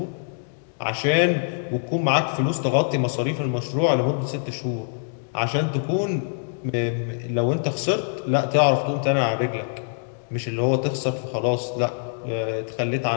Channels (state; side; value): silent; right; digital silence